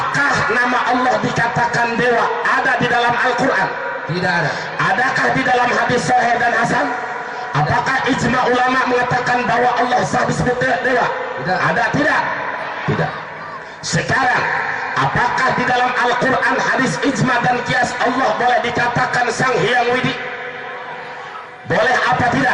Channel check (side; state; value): both; identical; correlation 1.00